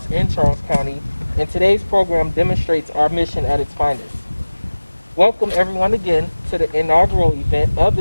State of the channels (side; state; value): both; inverted; correlation -1.00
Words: in Charles County, and today's program demonstrates our mission at its finest. Welcome everyone again to the inaugural event of